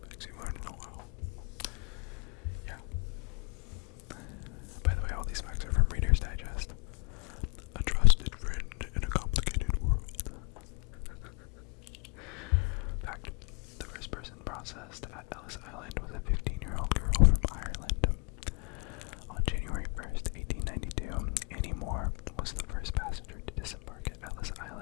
facts you learned in a while. Yeah. By the way, all these facts are from Reader's Digest. A trusted friend in a complicated world. Fact. The first person processed at Ellis Island was a 15-year-old girl from Ireland. On January 1st, 1892, Annie Moore was the first passenger to disembark at Ellis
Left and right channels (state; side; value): quieter; right; 34.7 dB